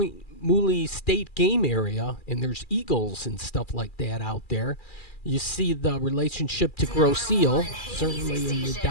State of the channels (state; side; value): late; right; 2.4 ms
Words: Mooley State game area, and there's eagles and stuff like that out there. You see the relationship to Grosse Ile, certainly in the